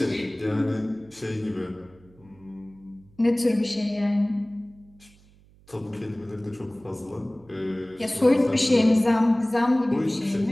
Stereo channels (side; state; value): right; noise; hum, 28 dB below the sound